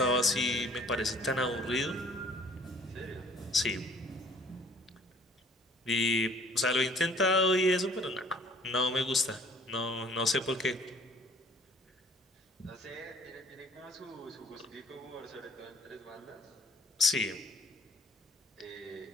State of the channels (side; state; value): both; normal; correlation 0.55